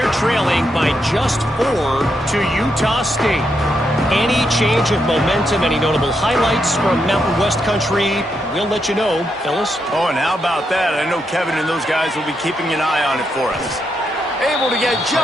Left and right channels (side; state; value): both; normal; correlation 0.81